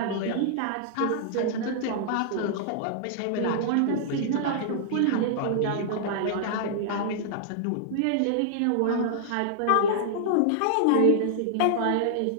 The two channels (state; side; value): different; both; correlation -0.01